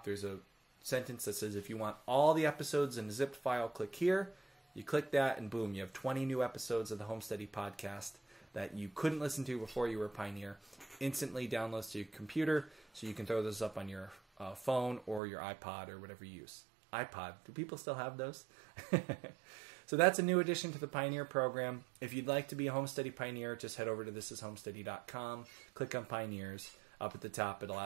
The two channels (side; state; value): left; drops out; at 15.2 s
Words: there's a sentence that says if you want all the episodes in a zipped file, click here. You click that, and boom, you have 20 new episodes of the Homesteady podcast that you couldn't listen to before you were a Pioneer. Instantly downloads to your computer, so you can throw those up on your phone or your iPod or whatever you use. iPod, do people still have those? So that's a new addition to the Pioneer program. If you'd like to be a Homesteady Pioneer, just head over to thisishomesteady.com, click on Pioneers. Up at the top, it'll